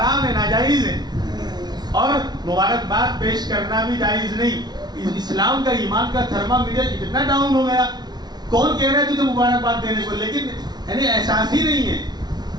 ہے، ناجائز ہے. اور مبارکباد پیش کرنا بھی جائز نہیں. اسلام کا، ایمان کا تھرمامیٹر اتنا ڈاؤن ہو گیا. کون کہہ رہا ہے تجھے مبارکباد دینے کو، لیکن یعنی احساس ہی نہیں ہے.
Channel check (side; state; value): left; late; 0.20 ms